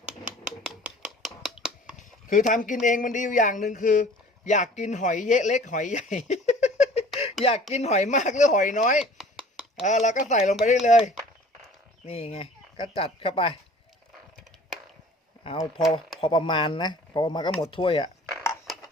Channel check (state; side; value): normal; both; correlation 0.48